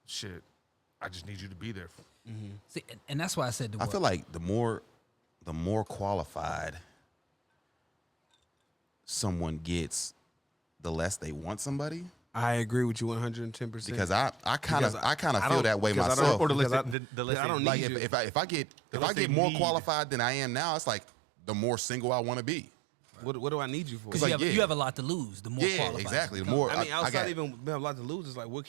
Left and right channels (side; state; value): left; drops out; at 16.9 s